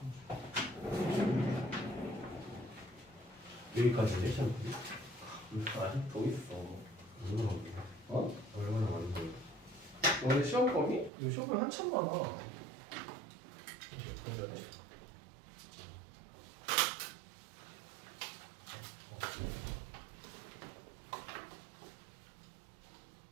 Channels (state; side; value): drops out; left; at 11.1 s